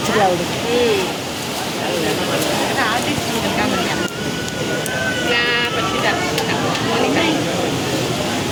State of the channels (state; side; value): identical; both; correlation 1.00